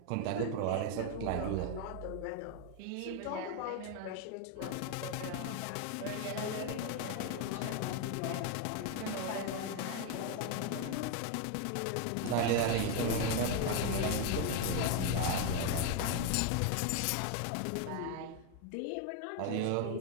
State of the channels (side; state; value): both; different; correlation 0.01